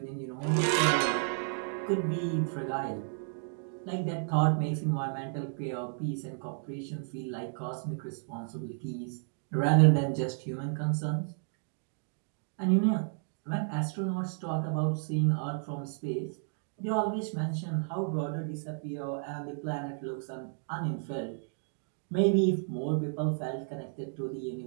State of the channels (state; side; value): silent; left; 56 dB below the other